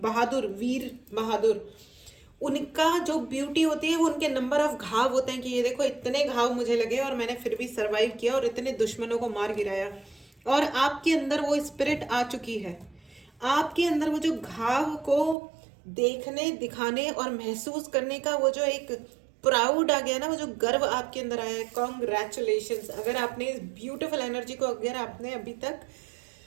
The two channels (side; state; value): left; drops out; at 15.4 s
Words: वीर बहादुर, उनका जो ब्यूटी होती है वो उनके नंबर ऑफ घाव होते हैं कि ये देखो इतने घाव मुझे लगे और मैंने फिर भी सरवाइव किया और इतने दुश्मनों को मार गिराया। और आपके अंदर वो स्पिरिट आ चुकी है, आपके अंदर वो जो घाव को देखने, दिखाने और महसूस करने का वो जो एक प्राउड आ गया ना, वो जो गर्व आपके अंदर आया है। कॉन्ग्रेचुलेशंस। अगर आपने इस ब्यूटीफुल एनर्जी को अगर आपने अभी तक